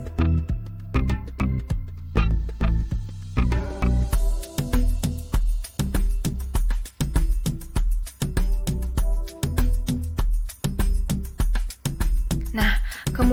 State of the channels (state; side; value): identical; both; correlation 1.00